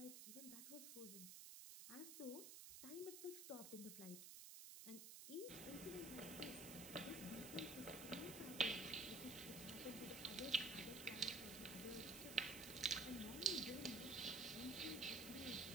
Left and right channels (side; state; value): right; noise; hiss, 9 dB below the sound